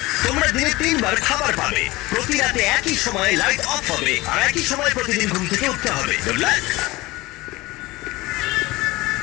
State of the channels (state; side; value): quieter; right; 20.6 dB